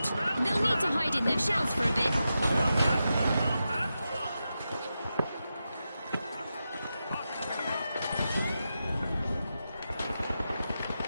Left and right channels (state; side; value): inverted; both; correlation -0.90